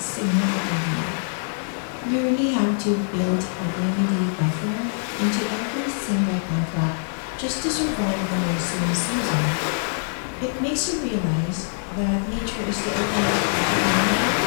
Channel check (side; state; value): right; silent; digital silence